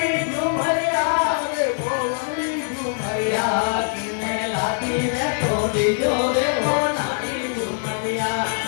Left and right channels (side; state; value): right; silent; 58 dB below the other